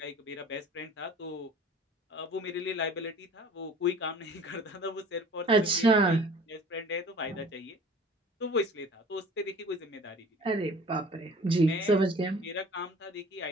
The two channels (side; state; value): both; normal; correlation 0.46